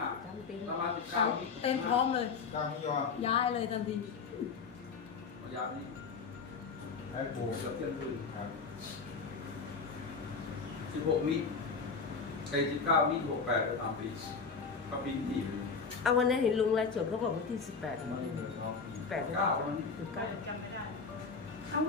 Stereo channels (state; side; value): quieter; right; 5.1 dB